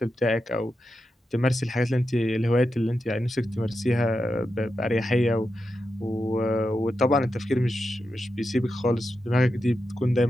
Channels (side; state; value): both; normal; correlation 0.88